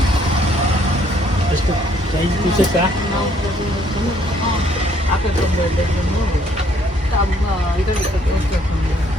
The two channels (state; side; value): normal; both; correlation 0.65